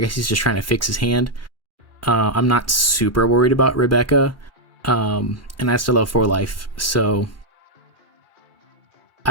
he's just trying to fix his hand. I'm not super worried about Rebecca. And I still have 4 life, so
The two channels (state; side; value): late; left; 2.4 ms